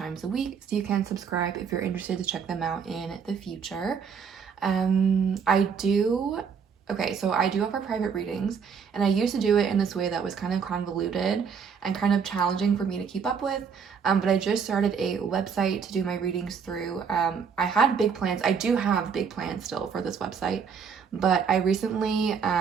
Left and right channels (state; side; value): quieter; left; 6.5 dB